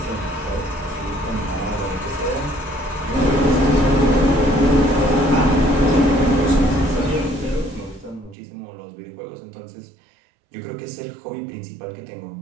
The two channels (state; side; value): drops out; left; at 8.3 s